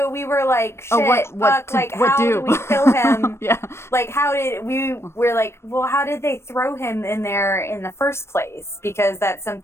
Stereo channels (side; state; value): right; late; 0.13 ms